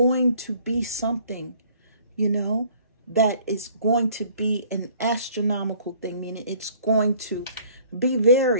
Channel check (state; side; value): inverted; both; correlation -0.56